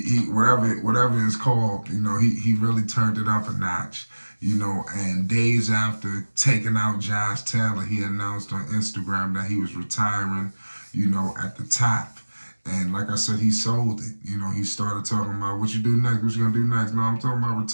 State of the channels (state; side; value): inverted; both; correlation -1.00